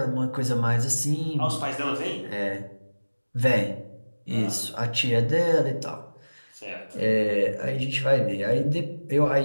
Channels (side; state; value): both; inverted; correlation -1.00